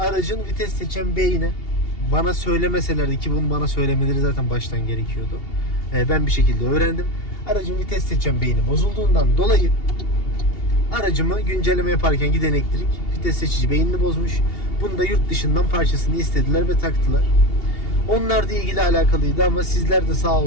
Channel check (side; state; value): right; late; 2.8 ms